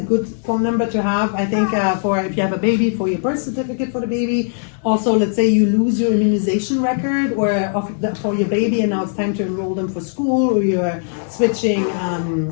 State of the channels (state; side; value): silent; right; 63 dB below the other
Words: phone number to have, I think, for if you have a baby, for your birth certificate for the baby. Also, let's say you lose your immunization record for your baby, and now it's time to enroll them for school, or you're switching